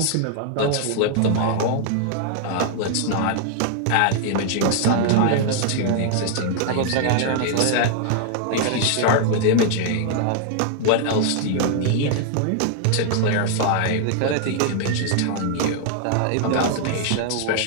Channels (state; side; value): different; both; correlation -0.01